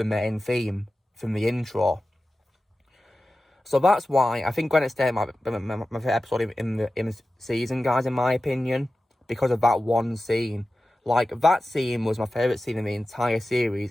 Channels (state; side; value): normal; both; correlation 0.94